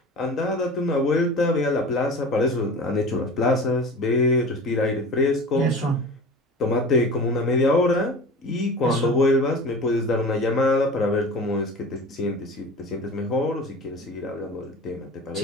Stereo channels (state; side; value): normal; both; correlation 0.36